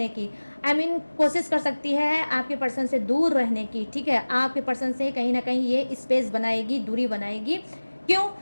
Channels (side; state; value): both; inverted; correlation -1.00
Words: की। कोशिश कर सकती है आपके पर्सन से दूर रहने की, ठीक है। आपके पर्सन से कहीं ना कहीं ये स्पेस बनाएगी, दूरी बनाएगी। क्यों?